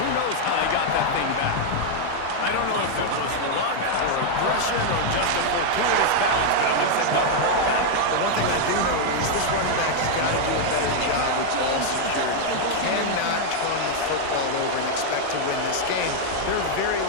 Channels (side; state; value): both; different; correlation 0.00